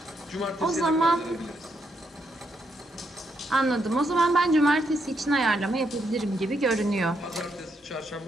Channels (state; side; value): normal; both; correlation 0.78